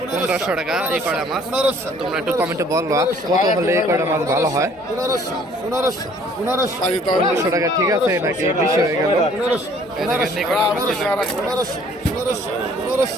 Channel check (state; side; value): normal; both; correlation 0.57